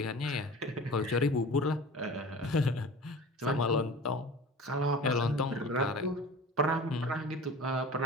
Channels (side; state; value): both; normal; correlation 0.38